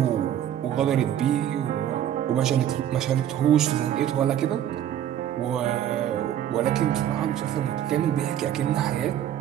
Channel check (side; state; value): left; quieter; 10.8 dB